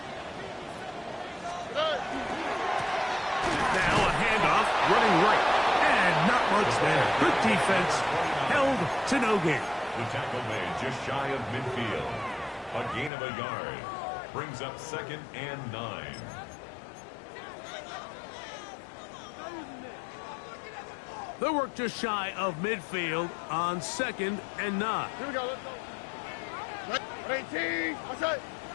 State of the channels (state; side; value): drops out; right; at 13.1 s